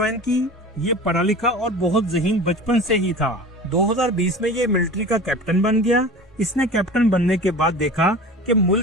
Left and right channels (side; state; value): both; normal; correlation 0.36